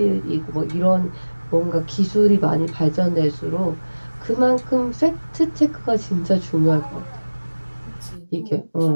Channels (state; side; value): inverted; both; correlation -1.00